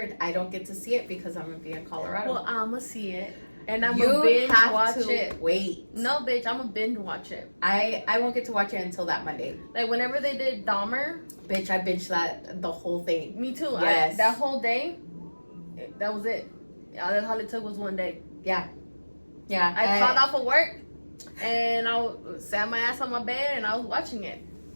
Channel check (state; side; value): inverted; both; correlation -1.00